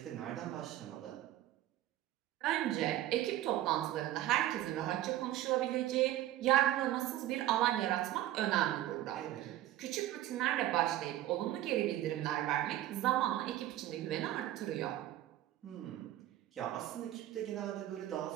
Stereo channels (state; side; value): quieter; left; 13.8 dB